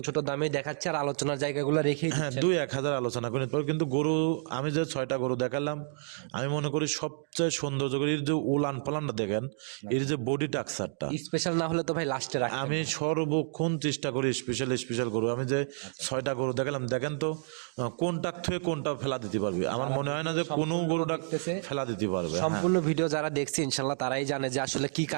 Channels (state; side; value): silent; left; digital silence